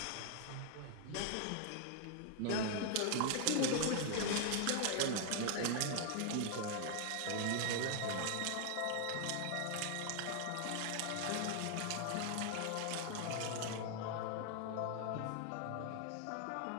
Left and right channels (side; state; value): both; different; correlation 0.00